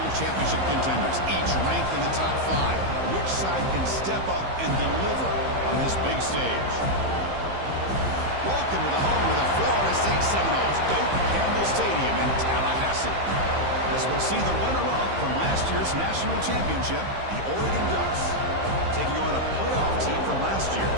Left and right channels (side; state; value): left; late; 15 ms